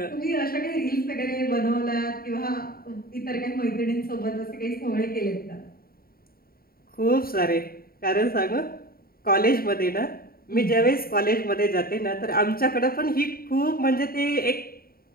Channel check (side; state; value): right; late; 0.43 ms